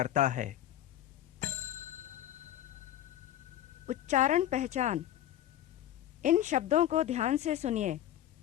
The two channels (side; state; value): right; quieter; 12.3 dB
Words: है। उच्चारण पहचान। इन शब्दों को ध्यान से सुनिए।